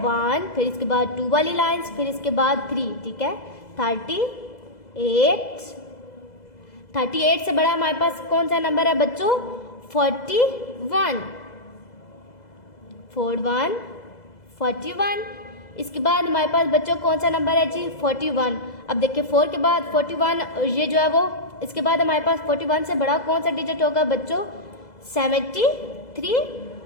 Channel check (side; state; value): right; late; 2.0 ms